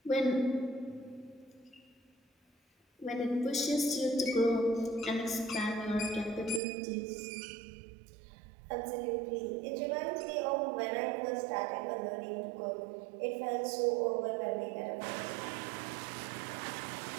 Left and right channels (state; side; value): drops out; left; at 6.6 s